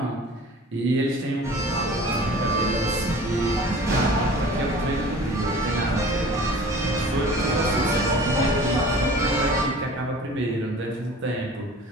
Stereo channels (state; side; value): normal; both; correlation 0.44